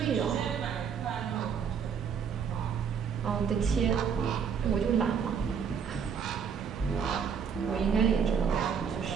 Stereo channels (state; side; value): quieter; left; 6.9 dB